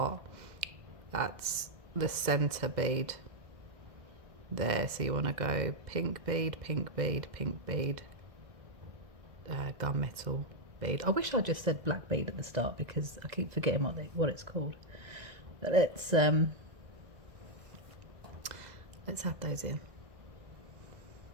that's the center bead there. So you want to go pink bead, pink bead, pink bead, gunmetal bead. I wish I just said black bead at the start, because I keep forgetting what it's called. But let's add those in.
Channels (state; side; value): late; left; 1.6 ms